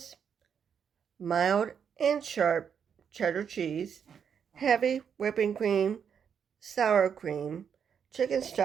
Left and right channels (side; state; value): left; quieter; 7.4 dB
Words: mild and sharp cheddar cheese, heavy whipping cream, sour cream, chicken